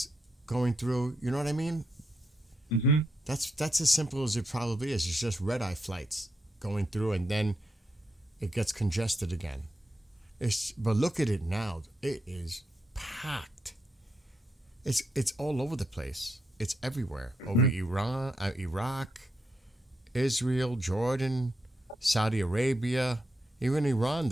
going through. You know what I mean? Mm-hmm. That's as simple as it probably is. It's just red eye flights going through, and then it gets congested again. But look at it now. It is packed. It's all over the place. It's everywhere. Over Iran, Iraq, Israel, Jordan, Saudi Arabia, even Iran.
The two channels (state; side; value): normal; both; correlation 0.82